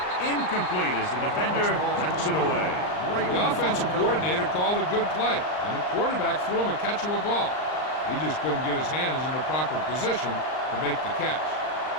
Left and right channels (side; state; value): right; late; 39 ms